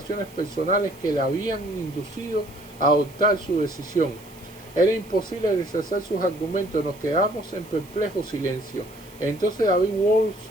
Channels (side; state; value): right; noise; hiss, 23 dB below the sound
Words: personales que le habían inducido a adoptar su decisión. Era imposible rechazar sus argumentos, nos quedamos en perplejo silencio. Entonces David